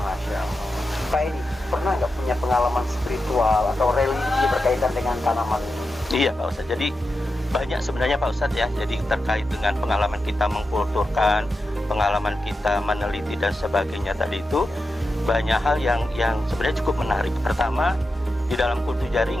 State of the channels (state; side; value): normal; both; correlation 0.90